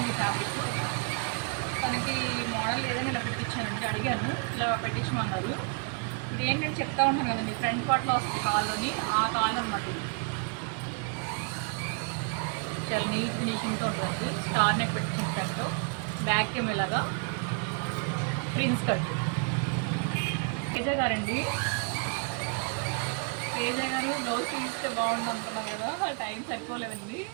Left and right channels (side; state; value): left; quieter; 37.8 dB